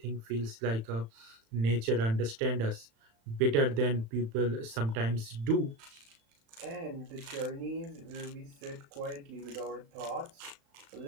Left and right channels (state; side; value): late; left; 36 ms